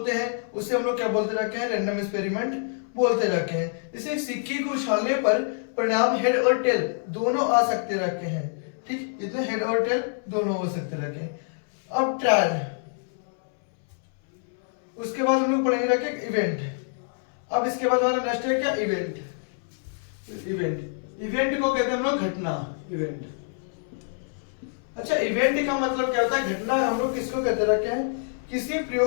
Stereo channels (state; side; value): silent; right; 61 dB below the other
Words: हैं उसे हम लोग क्या बोलते रखे हैं, रैंडम एक्सपेरिमेंट बोलते रखे हैं। जैसे सिक्के को उछालने पर परिणाम हेड और टेल दोनों आ सकते रखे हैं, ठीक, इतने हेड और टेल दोनों हो सकते रखे हैं। अब ट्रायल, उसके बाद हम लोग पढ़ेंगे रखे इवेंट। अब इसके बाद हमारा नेक्स्ट है क्या, इवेंट। इवेंट को कहते हैं हम लोग घटना, इवेंट। अच्छा, इवेंट का मतलब क्या होता है, घटना हम लोग किसको कहते रखे हैं, किसी